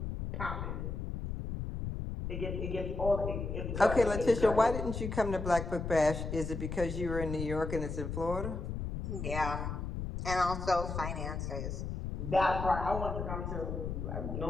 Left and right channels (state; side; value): noise; left; rumble, 4 dB below the sound